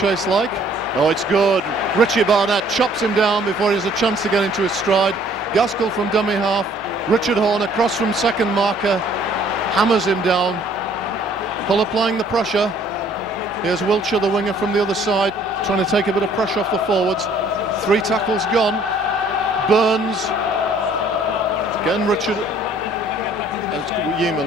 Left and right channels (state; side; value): normal; both; correlation 0.59